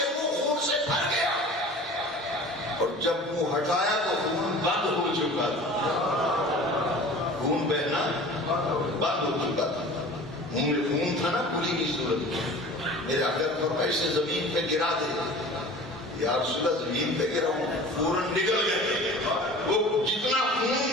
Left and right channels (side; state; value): both; normal; correlation 0.41